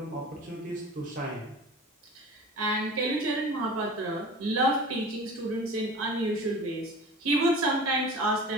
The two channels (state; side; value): normal; both; correlation 0.38